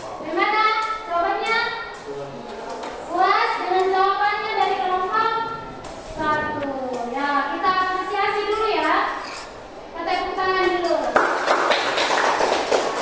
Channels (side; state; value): both; identical; correlation 1.00